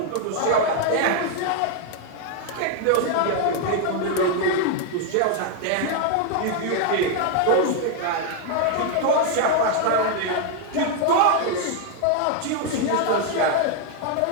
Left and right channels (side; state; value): both; different; correlation 0.00